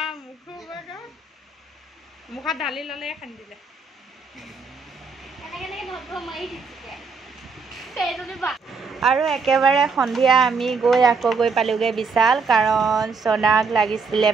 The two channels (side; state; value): left; quieter; 4.7 dB